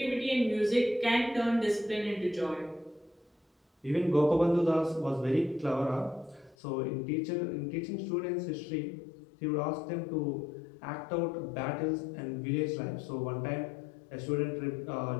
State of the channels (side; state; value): right; drops out; at 6.6 s